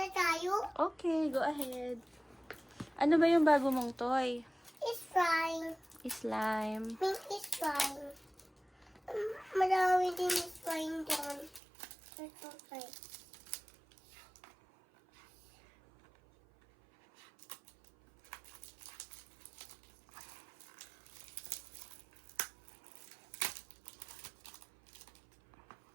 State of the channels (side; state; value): left; drops out; at 11.6 s